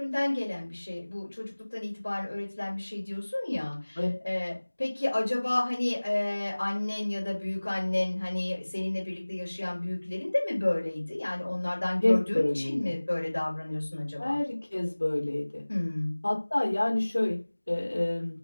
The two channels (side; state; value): both; inverted; correlation -1.00